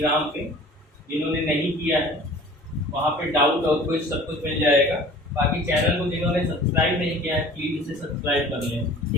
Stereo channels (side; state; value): both; normal; correlation 0.46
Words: पे, जिन्होंने नहीं किया है। वहाँ पे डाउट और कुछ सब कुछ मिल जाएगा। बाकी चैनल को जिन्होंने सब्सक्राइब नहीं किया है प्लीज़ इसे सब्सक्राइब कर लें,